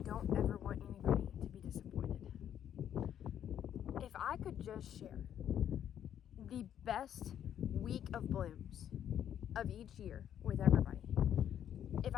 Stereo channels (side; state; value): right; quieter; 9.9 dB